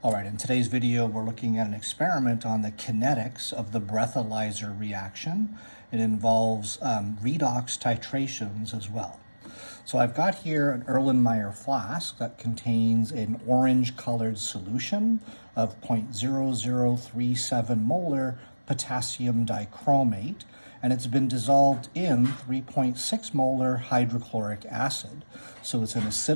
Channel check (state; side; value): inverted; both; correlation -1.00